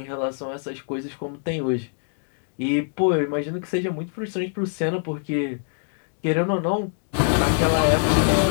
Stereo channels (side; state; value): right; silent; digital silence